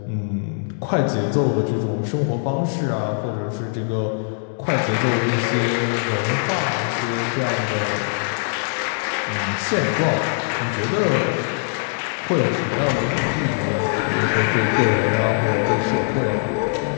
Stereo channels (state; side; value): silent; right; digital silence